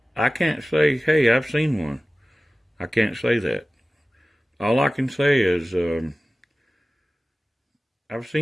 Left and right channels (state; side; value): normal; both; correlation 0.96